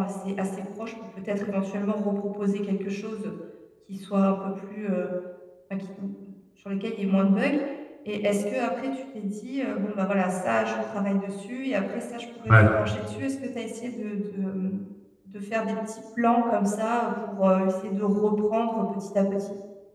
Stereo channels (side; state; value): both; identical; correlation 1.00